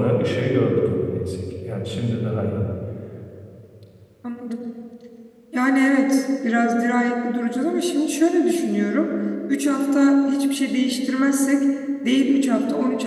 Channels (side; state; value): both; identical; correlation 1.00